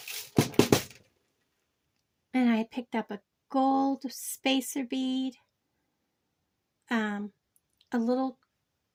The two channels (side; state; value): both; identical; correlation 1.00